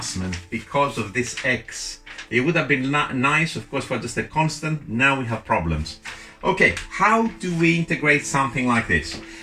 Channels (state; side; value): identical; both; correlation 1.00